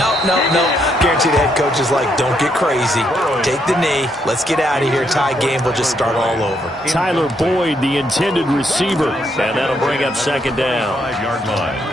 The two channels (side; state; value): both; normal; correlation 0.75